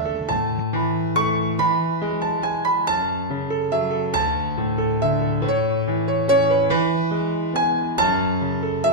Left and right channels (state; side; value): normal; both; correlation 0.03